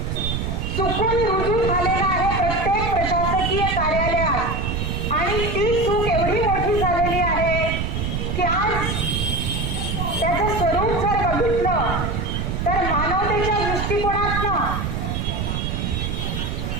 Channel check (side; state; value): right; noise; rumble, 2 dB below the sound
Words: चुकून रुजू झालेला आहे प्रत्येक प्रशासकीय कार्यालयात आणि ती चूक एवढी मोठी झालेली आहे की आज त्याचं स्वरूप जर बघितलं तर मानवतेच्या दृष्टिकोनातनं